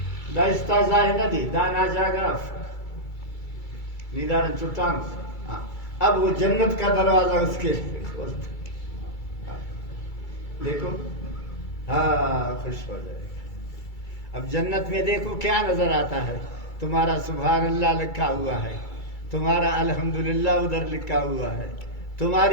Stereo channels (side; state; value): right; late; 2.3 ms